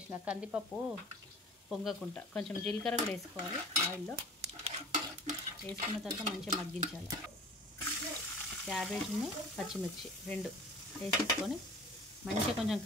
కందిపప్పు పొంగకుండా, కొంచెం జీలకర్ర కూడా వేసుకోవాలి. ఆయిల్లో వేసుకున్న తర్వాత మంచిగా మగ్గించాలి. క్యాబేజ్ను పచ్చిమిర్చి రెండు వేసేసుకొని మంచిగా కొంచెం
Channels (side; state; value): both; normal; correlation 0.43